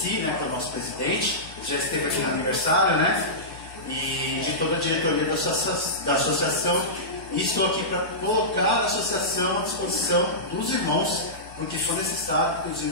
né, que é o nosso presidente, já esteve aqui no aniversário, né? E de toda a diretoria da associação. E estou aqui para colocar a associação à disposição dos irmãos, no que for necessário, que os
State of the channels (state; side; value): normal; both; correlation -0.16